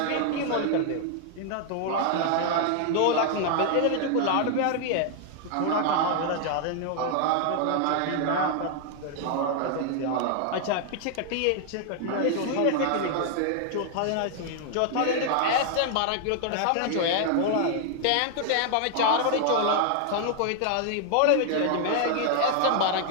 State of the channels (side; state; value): both; different; correlation 0.00